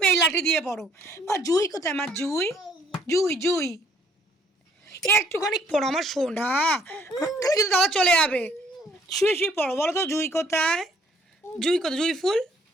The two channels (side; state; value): both; normal; correlation 0.63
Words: এই লাঠি দিয়ে পড়ো। মা জুই কোথায়? মা জুই। জুই জুই একটুখানি পড়ো আমার সোনা, তাহলে কিন্তু দাদা চলে যাবে। শুয়ে শুয়ে পড়ো, বলো তো জুই কোথায়? জুই কোথায়? জুই ফুল।